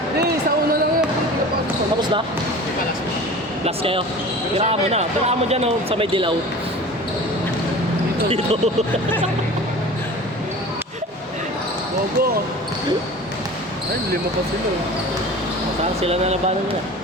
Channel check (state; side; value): normal; both; correlation 0.38